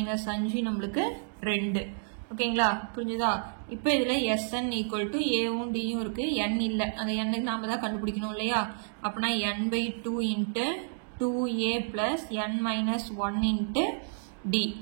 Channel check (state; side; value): silent; left; digital silence